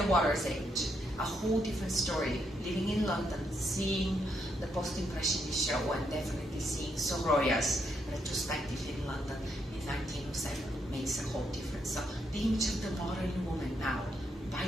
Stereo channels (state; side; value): normal; both; correlation 0.78